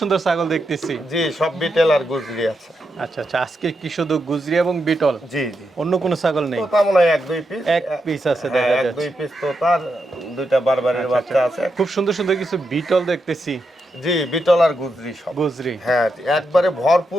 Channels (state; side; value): normal; both; correlation 0.84